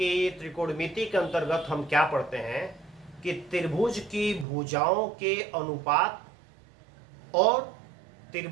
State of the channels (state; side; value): drops out; left; at 4.5 s